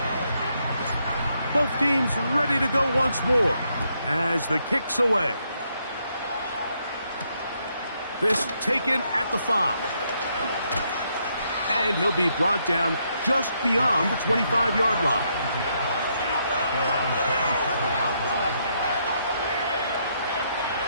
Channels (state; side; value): inverted; both; correlation -0.76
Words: Both teams ready to go once more as the kick's away. This taken at the 5. And he'll be brought down just beyond the 25-yard line.